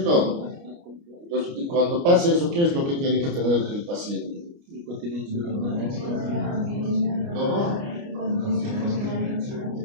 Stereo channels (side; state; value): left; late; 29 ms